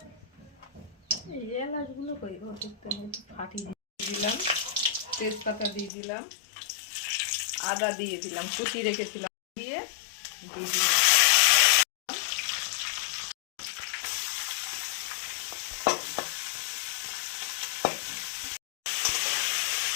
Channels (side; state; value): right; drops out; at 5.9 s